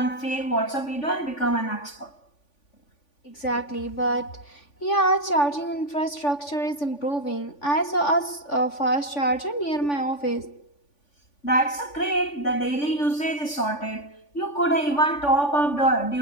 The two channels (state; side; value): late; right; 3.5 ms